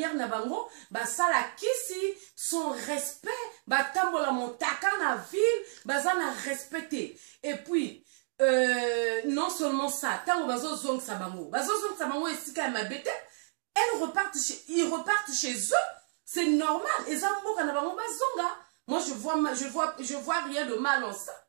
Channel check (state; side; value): silent; left; digital silence